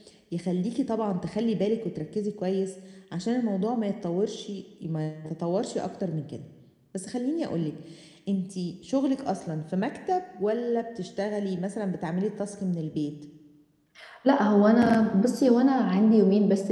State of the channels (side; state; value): both; identical; correlation 1.00